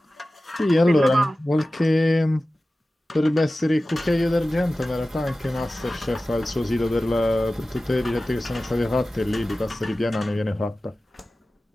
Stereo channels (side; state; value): both; normal; correlation 0.96